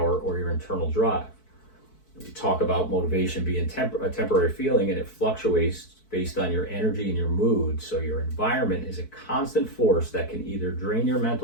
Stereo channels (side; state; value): right; late; 4.6 ms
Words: or your internal drive. We talk about motivation being a temporary feeling, and it fluctuates based on your energy and your mood. So your environment is a constant force that can either drain your